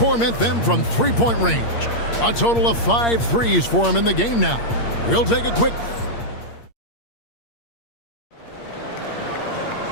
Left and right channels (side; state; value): right; late; 8.6 ms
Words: them from three-point range. A total of 5 threes for him in the game now. We'll take a quick...